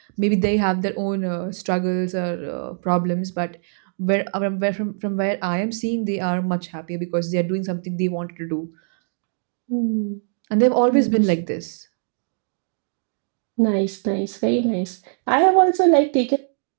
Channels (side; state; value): left; silent; digital silence